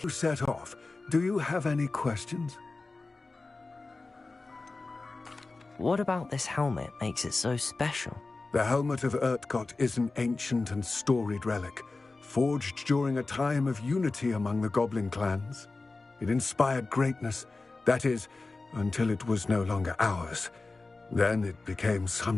You set off. Do you have any questions? What about this helmet makes it so special? The helmet of Urtkot is an ancient and storied relic, forged during a time of unity among the goblin clans. It inspired greatness, that is, until it was no longer ours. Then it became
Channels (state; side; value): quieter; right; 3.6 dB